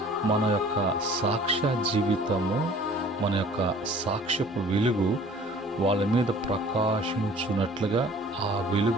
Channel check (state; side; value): normal; both; correlation 0.50